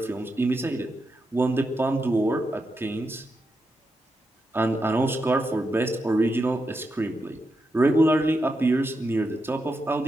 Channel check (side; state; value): both; normal; correlation 0.86